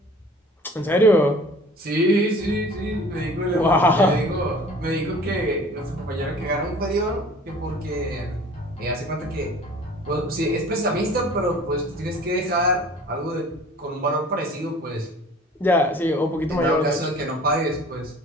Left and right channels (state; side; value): normal; both; correlation 0.47